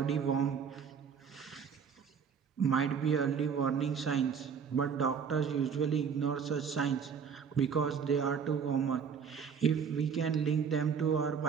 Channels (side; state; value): left; quieter; 6.8 dB